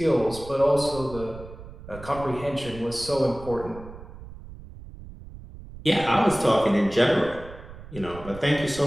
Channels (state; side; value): noise; right; rumble, 15 dB below the sound